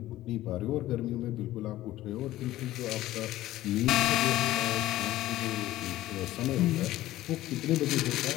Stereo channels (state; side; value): quieter; right; 15.4 dB